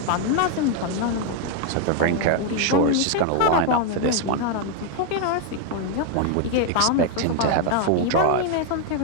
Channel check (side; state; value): both; different; correlation 0.00